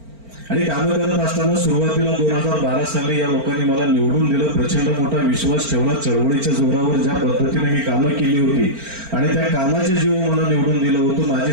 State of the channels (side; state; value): left; late; 4.4 ms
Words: आणि कामं करत असताना सुरुवातीला 2012 साली या लोकांनी मला निवडून दिलं. प्रचंड मोठा विश्वास ठेवला. चळवळीच्या जोरावर ज्या पद्धतीने मी कामं केली होती आणि त्या कामाच्या जीव मला निवडून दिलं होतं, माझी